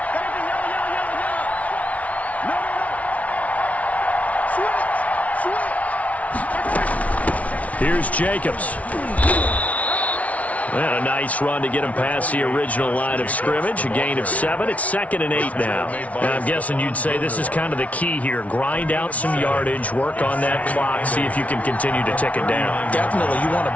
Here's Jacobs. And a nice run to get him past the original line of scrimmage. A gain of 7. It's 2nd and 8 now. And I'm guessing you'd say this is kind of the key here. Grind out some yardage, work on that clock, see if you can continue to tick it down. Definitely. You want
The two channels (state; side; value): late; right; 0.067 ms